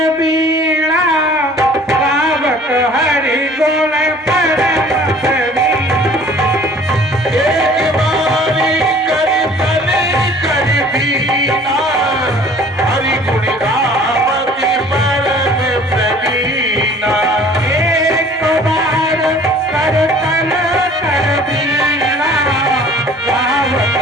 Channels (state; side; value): normal; both; correlation 0.51